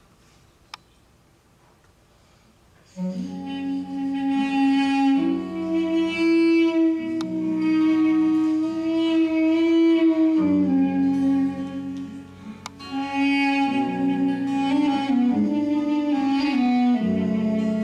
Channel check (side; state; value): both; identical; correlation 1.00